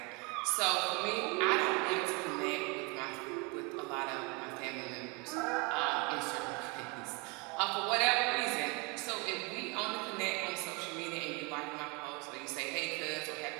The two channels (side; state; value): left; quieter; 29.6 dB